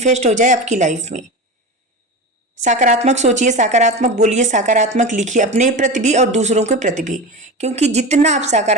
हो जाए आपकी लाइफ में। सकारात्मक सोचिए, सकारात्मक बोलिए, सकारात्मक लिखिए अपने प्रति भी और दूसरों के प्रति भी। क्योंकि जितना आप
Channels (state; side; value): normal; both; correlation 0.26